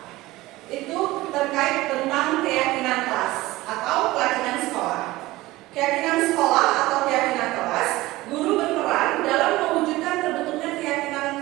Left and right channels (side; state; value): left; quieter; 18.5 dB